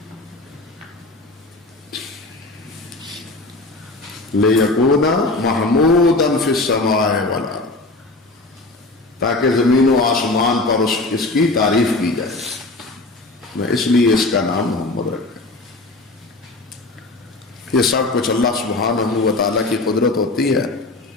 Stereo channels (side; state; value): right; quieter; 3.0 dB